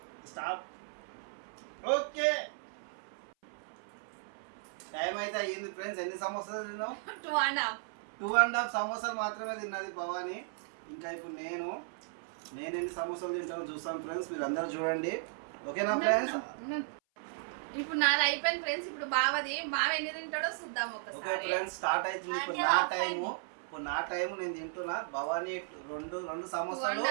స్టాప్. ఓకే, టైం అయితే అయ్యింది ఫ్రెండ్స్. ఎన్ని సమోసాలు తిన్నావు? 2.5 సమోసాలు మాత్రమే తిన్నది భవానీ. ఇంకా ఇప్పుడు నేను ఎన్ని సమోసాలు తింటామో చూస్తాను ఫ్రెండ్స్. మీరు అందరూ చూడండి. ఓకేనా ఫ్రెండ్స్? ఇప్పుడు నాది అయిపోయింది ఫ్రెండ్స్. ఇప్పుడు బావది. బావ ఎన్ని తింటాడో చూద్దాం ఒకసారి. ఓకే ఫ్రెండ్స్, స్టార్ట్ అవుతుంది. ఇప్పుడు నా టైము నేను తింటున్నా. భవానీ 2 సమోసాలు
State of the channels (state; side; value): silent; left; 54 dB below the other